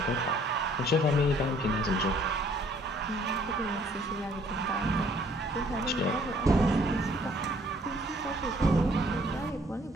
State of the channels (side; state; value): both; normal; correlation 0.60